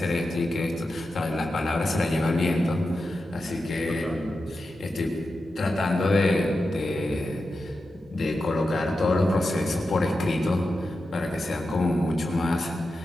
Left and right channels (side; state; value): both; normal; correlation 0.90